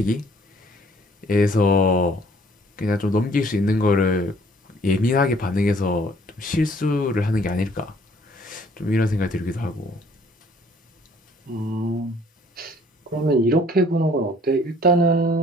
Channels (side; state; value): both; normal; correlation 0.58